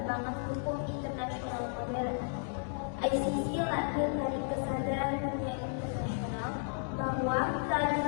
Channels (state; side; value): silent; right; 55 dB below the other